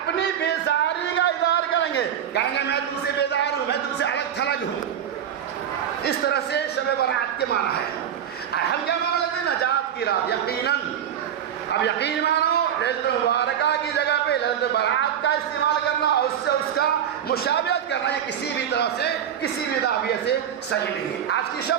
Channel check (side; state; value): left; quieter; 9.3 dB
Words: بیزاری کا اظہار کریں گے, کہیں گے میں تم سے بیزار ہوں, میں تم سے الگ تھلگ ہوں. اس طرح سے شب برات کے معنی ہے. ہم کیا معنی لیتے ہیں؟ نجات کی رات. یقیناً اب یقین مانو ليلۃ مبارکہ کی جگہ پہ ليلۃ برات کا استعمال کرنا اور اس سے اس کا مشابہت کرنا یہ کسی بھی طرح سے کسی بھی زاویے سے صحیح نہیں ہے. آج کی